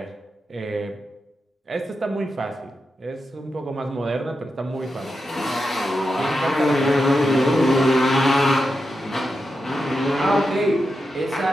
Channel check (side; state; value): both; normal; correlation 0.88